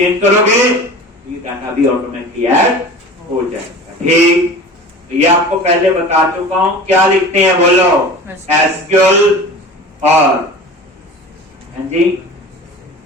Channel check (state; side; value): normal; both; correlation 0.37